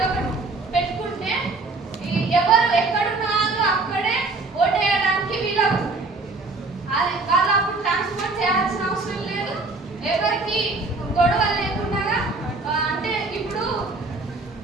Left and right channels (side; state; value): left; quieter; 3.5 dB